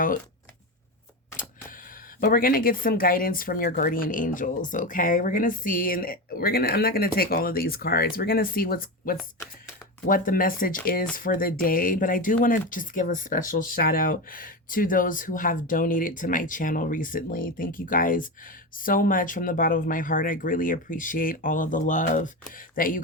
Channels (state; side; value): normal; both; correlation 0.18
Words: But we're going to get some guidance from your guardian angels, okay? We're going to see, and I'm not going to take all of these cards. We're going to see what the message is for the day. But I do want to just give a special shout out to those who have donated to my channel recently. Thank you guys so much from the bottom of my heart. I greatly appreciate all of the love that you